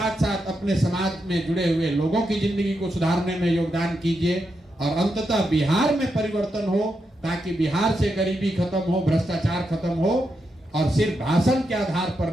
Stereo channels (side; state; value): both; normal; correlation 0.84